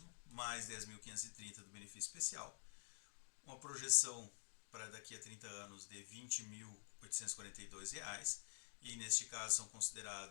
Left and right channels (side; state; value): right; silent; digital silence